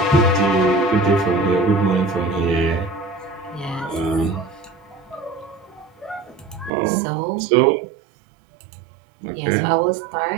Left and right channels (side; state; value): left; drops out; at 6.7 s